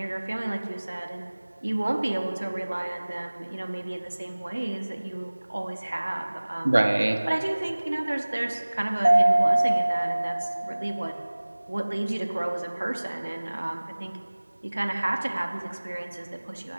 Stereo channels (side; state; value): both; inverted; correlation -1.00